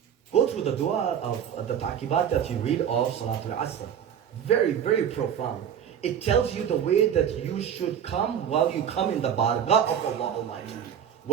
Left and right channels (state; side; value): quieter; left; 8.7 dB